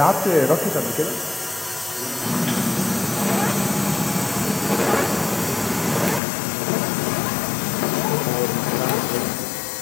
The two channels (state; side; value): drops out; right; at 6.2 s